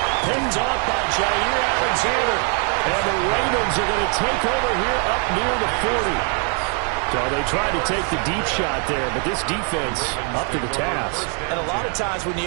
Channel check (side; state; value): left; quieter; 39.9 dB